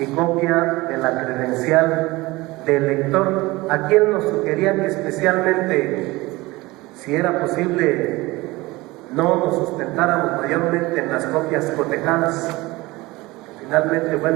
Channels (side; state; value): left; quieter; 21.0 dB